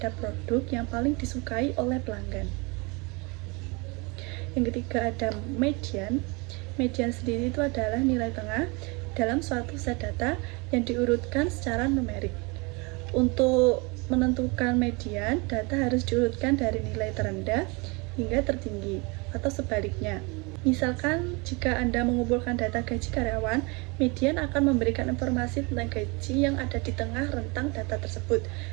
produk yang paling disukai oleh pelanggan. Yang ketiga ada median. Median sendiri itu adalah nilai tengah dalam suatu set data yang diurutkan secara numerik. Untuk menentukan median, data harus diurutkan dari nilai terendah hingga tertinggi, atau sebaliknya. Misalkan, jika Anda mengumpulkan data gaji karyawan, median akan memberikan informasi tentang gaji yang ada di tengah rentang data tersebut,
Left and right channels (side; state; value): left; quieter; 28.4 dB